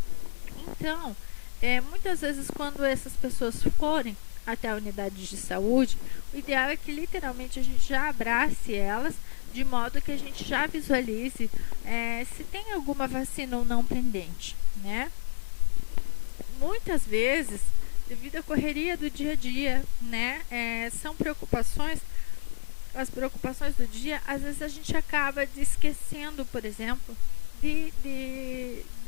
Então, muitas vezes quando essas pessoas forem até a unidade de saúde, o ideal é que literalmente a gente já abrace elas, de modo que a gente já visualize se tem alguma vacina ou não pendente, né? Muitas vezes, devido à correria do dia a dia, né, são preocupações, as preocupações do dia, às vezes a gente acaba esquecendo, por exemplo,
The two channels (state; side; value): silent; right; 59 dB below the other